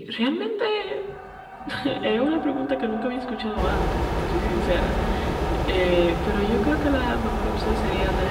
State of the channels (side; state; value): both; identical; correlation 1.00